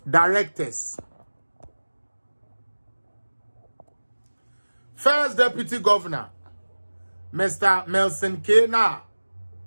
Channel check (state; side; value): inverted; both; correlation -1.00